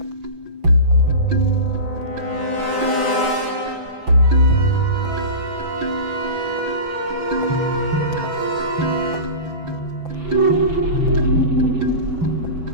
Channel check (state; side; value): late; left; 5.9 ms